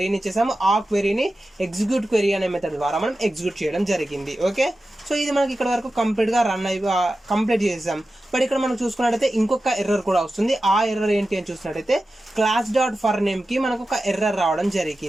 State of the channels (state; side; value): normal; both; correlation 0.93